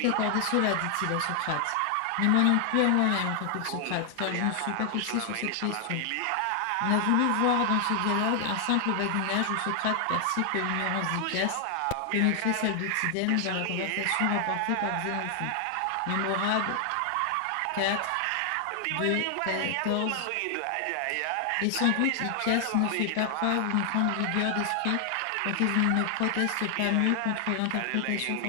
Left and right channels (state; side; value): different; both; correlation 0.00